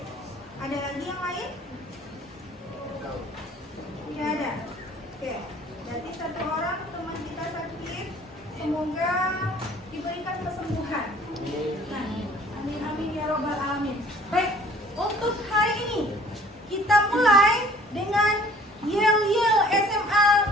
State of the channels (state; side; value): normal; both; correlation 0.53